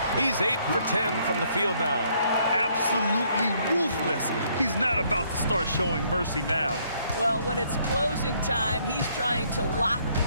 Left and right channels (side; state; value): both; inverted; correlation -0.67